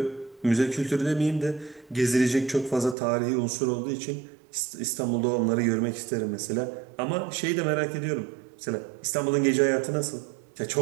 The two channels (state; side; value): drops out; left; at 3.0 s